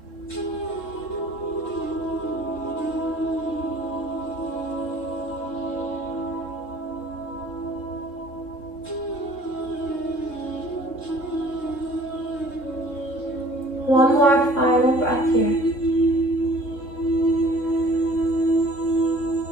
One more final breath here.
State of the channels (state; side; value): late; right; 3.7 ms